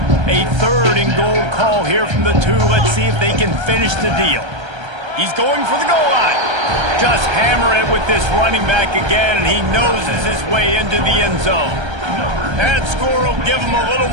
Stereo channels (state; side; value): late; left; 1.3 ms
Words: A 3rd and goal call here from the 2. Let's see if they can finish the deal. He's going for the goal line. Just hammer it with this running back again, and he noses his way into the end zone. That score will give them a little